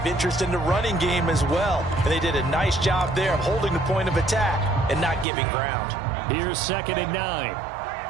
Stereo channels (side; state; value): left; drops out; at 5.2 s